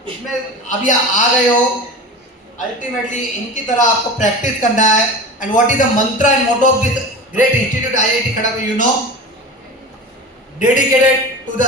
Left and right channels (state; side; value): normal; both; correlation 0.32